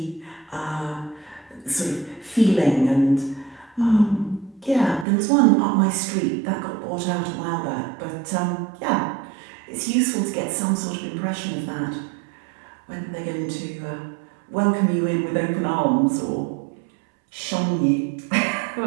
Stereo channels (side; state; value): left; drops out; at 5.1 s